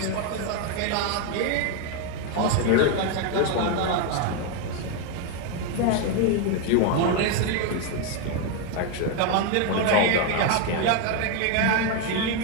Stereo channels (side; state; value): both; different; correlation 0.01